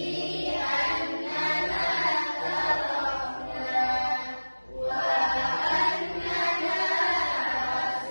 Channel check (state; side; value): inverted; both; correlation -1.00